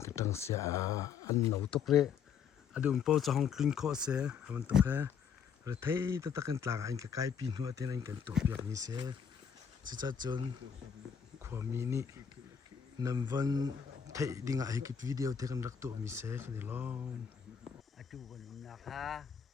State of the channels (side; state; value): right; quieter; 7.3 dB